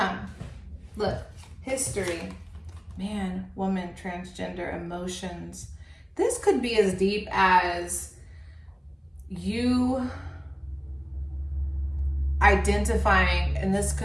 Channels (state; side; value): identical; both; correlation 1.00